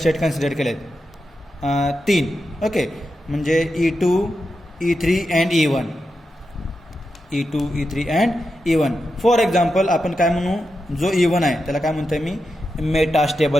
कन्सिडर केले आहेत, 3. ओके, म्हणजे E2, E3 and E1. E2, E3 and E1. For example आपण काय म्हणू, जो E1 आहे त्याला काय म्हणतोय मी,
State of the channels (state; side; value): normal; both; correlation 0.88